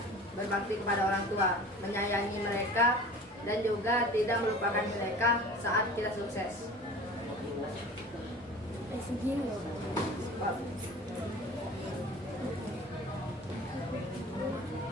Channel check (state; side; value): normal; both; correlation 0.40